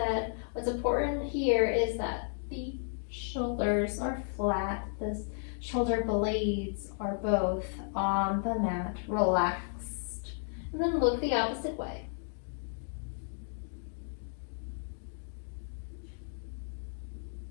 what's important here is that the shoulders are flat. The shoulder blades are both on the mat, relaxed. And then look the opposite way.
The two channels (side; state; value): right; silent; digital silence